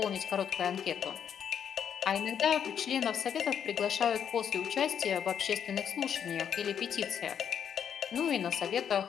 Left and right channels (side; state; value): right; quieter; 8.3 dB